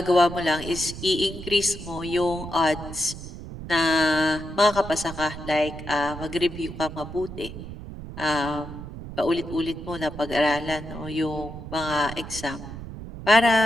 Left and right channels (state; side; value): noise; right; rumble, 11 dB below the sound